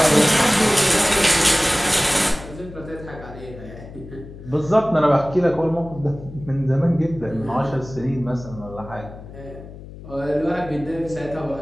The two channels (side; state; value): left; noise; hum, 15 dB below the sound